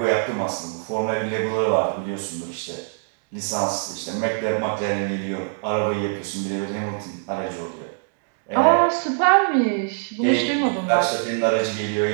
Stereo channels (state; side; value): silent; left; digital silence